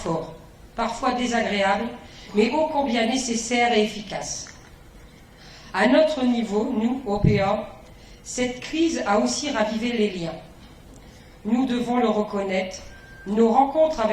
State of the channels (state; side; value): identical; both; correlation 1.00